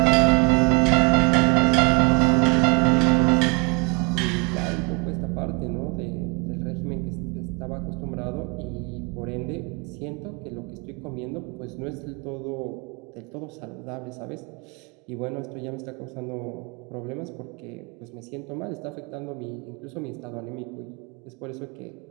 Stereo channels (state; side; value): quieter; left; 31.8 dB